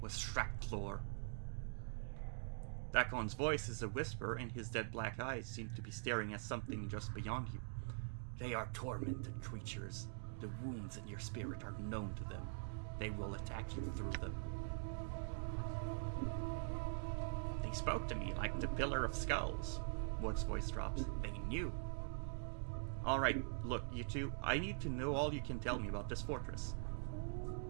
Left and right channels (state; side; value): silent; left; digital silence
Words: Shracklor. Dakon's voice is a whisper, and his dead black eyes seem to be staring at something just beyond you. They are tormented creatures. The wounds in your spirit are known to them. They will attack you through them. They spoke to me like the Pillar of Skulls. Mort's voice drops. They knew. Alright, look, you two, I need to know all you can tell me about this fortress.